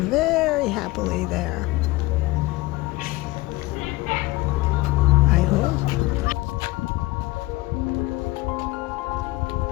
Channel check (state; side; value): quieter; right; 20.2 dB